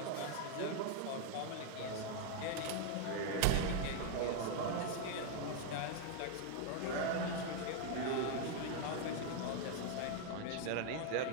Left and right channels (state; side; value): different; both; correlation 0.01